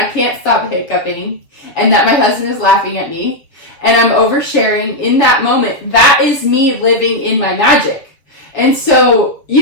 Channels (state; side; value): late; right; 7.5 ms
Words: can't stop hiccuping, and that my husband is laughing at me and I'm oversharing in that moment. That is me living in my magic. And so,